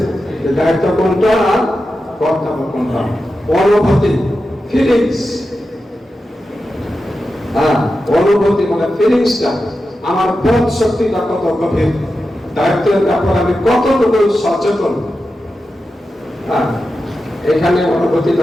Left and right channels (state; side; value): normal; both; correlation 0.91